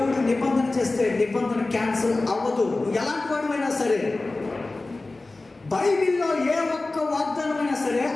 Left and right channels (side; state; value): right; quieter; 3.2 dB